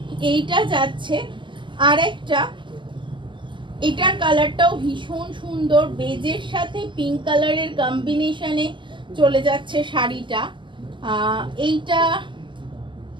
এইটা যাচ্ছে আরেকটা, এটার কালারটাও ভীষণ সুন্দর, বেজের সাথে পিঙ্ক কালারের কম্বিনেশনে চলে যাচ্ছে শাড়িটা। এইটা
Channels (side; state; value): left; late; 0.24 ms